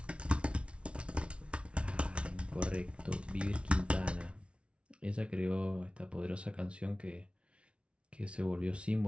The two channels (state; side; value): late; left; 0.060 ms